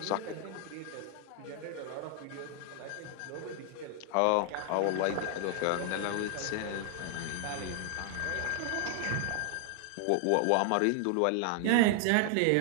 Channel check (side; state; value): both; different; correlation 0.00